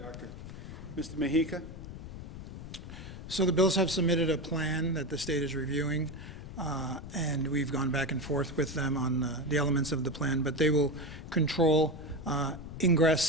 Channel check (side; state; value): left; noise; rumble, 11 dB below the sound